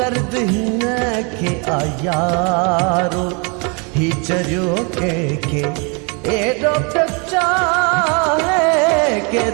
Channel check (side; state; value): left; quieter; 33.4 dB